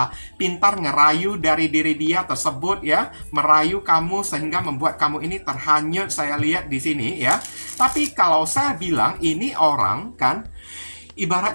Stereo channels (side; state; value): both; inverted; correlation -1.00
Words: pintar ngerayu dari diri dia tersebut ya, merayu kamu sehingga membuat kamu ini terhanyut, saya lihat di sini ya. Tapi kalau saya bilang ini orang kan,